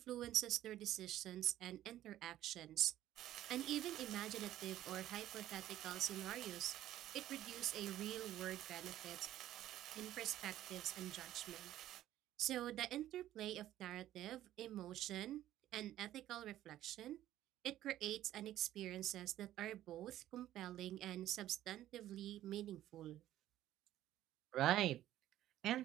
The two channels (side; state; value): left; quieter; 13.3 dB